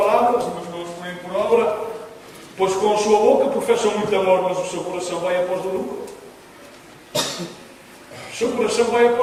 mas não as põem por obra. Pois com a sua boca professam muito amor, mas o seu coração vai após o lucro. seu coração vai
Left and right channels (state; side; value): identical; both; correlation 1.00